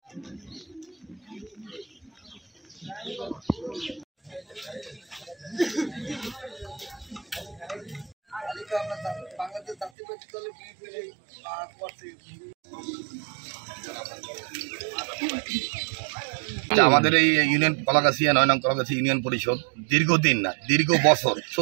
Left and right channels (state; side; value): drops out; left; at 9.9 s